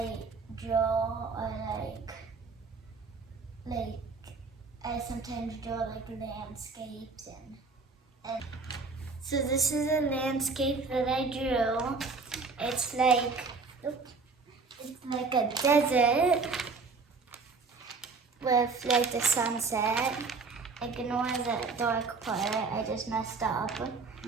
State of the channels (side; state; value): left; quieter; 4.4 dB